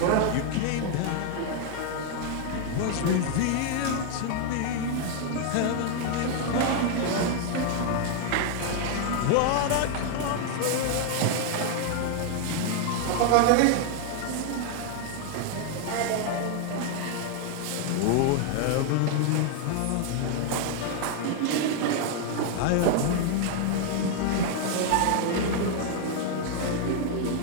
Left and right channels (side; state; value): both; different; correlation 0.00